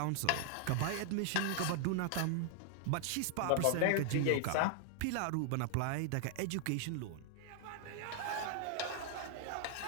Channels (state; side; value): different; both; correlation 0.00